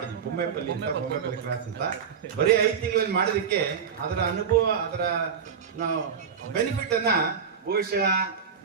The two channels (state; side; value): quieter; left; 6.7 dB